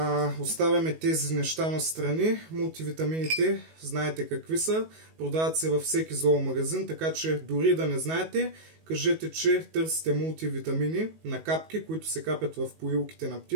Оставяме тези неща на страни. Мултивитамините, знаете какви са, продават се във всеки зоомагазин, така че дори да не знаете, кажете, че търсите мултивитамини на капки, които се капят в поилките на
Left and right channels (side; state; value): left; late; 19 ms